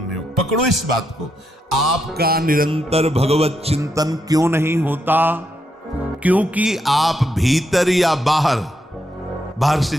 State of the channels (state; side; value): normal; both; correlation 0.80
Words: होगा। पकड़ो इस बात को, आपका निरंतर भगवत चिंतन क्यों नहीं होता? क्योंकि आप भीतर या बाहर से